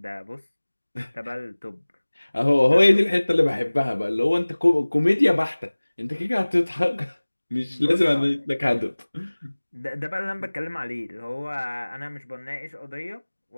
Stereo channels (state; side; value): inverted; both; correlation -1.00